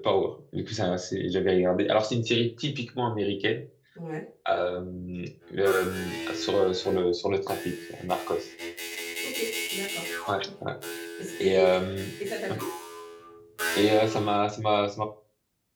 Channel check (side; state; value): both; identical; correlation 1.00